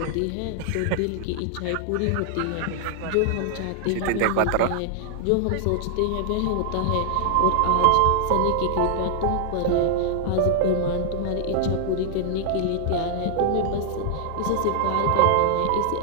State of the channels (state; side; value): different; both; correlation 0.00